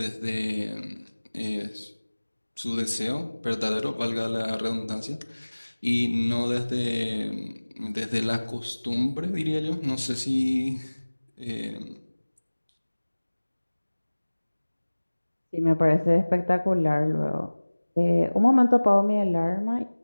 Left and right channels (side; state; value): both; inverted; correlation -1.00